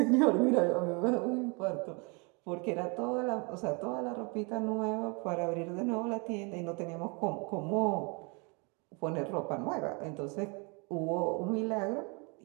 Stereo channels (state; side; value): quieter; left; 31.9 dB